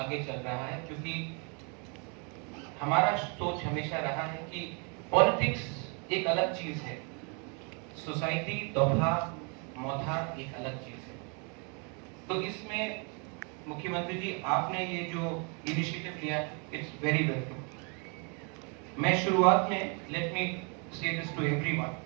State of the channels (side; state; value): left; quieter; 35.5 dB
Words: चल रहा है, क्योंकि हमारा सोच हमेशा रहा है कि पॉलिटिक्स एक अलग चीज है, सोसाइटी दोभा मौथा एक अलग चीज है। तो इसमें मुख्यमंत्री जी आपने ये जो इनिशिएटिव लिया, इट्स वेरी वेलकम। मैं शुरुआत में लेट मी से दिस टू एवरीवन,